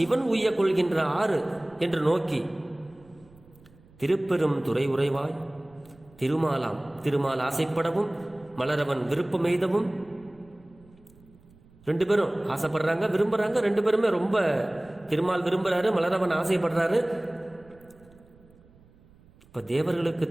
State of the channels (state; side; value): noise; right; rumble, 27 dB below the sound